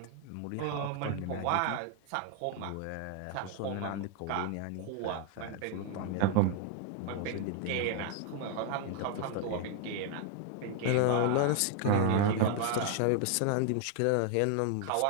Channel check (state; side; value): different; both; correlation 0.00